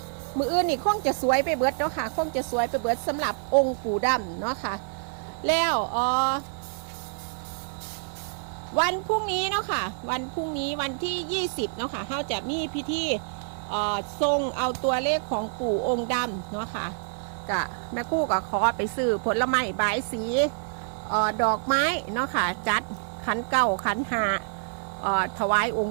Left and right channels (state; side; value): silent; left; 57 dB below the other